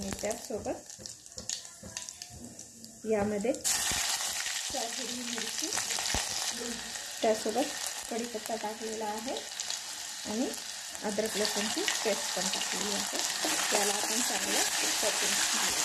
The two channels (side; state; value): both; identical; correlation 1.00